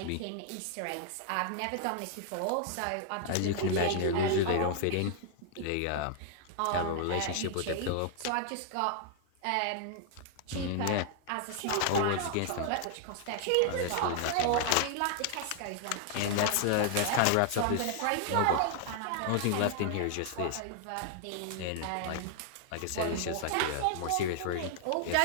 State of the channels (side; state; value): both; different; correlation 0.00